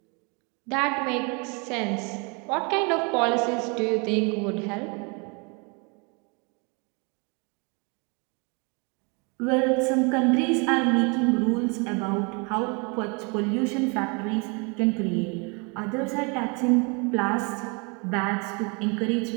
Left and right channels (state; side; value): quieter; left; 32.2 dB